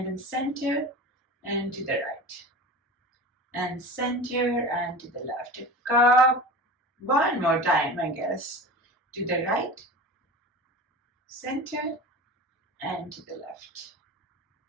then center and to the right. and center and to the left. A cup. One more time, I guess. To the right, center, and to the left,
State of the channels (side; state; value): both; normal; correlation 0.33